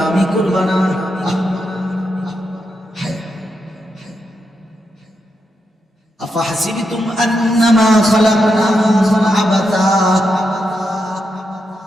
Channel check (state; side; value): normal; both; correlation 0.84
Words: করবা না? আফাহাসিবতুম আন্নামা খালাকনাকুম আবাতা।